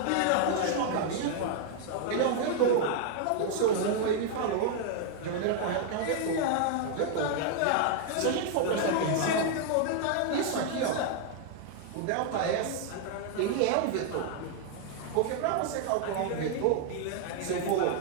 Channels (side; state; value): both; different; correlation 0.00